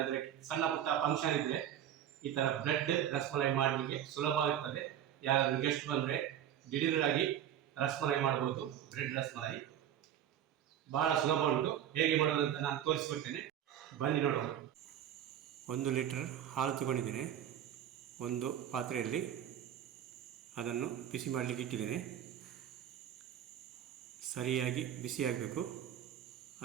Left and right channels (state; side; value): quieter; left; 10.4 dB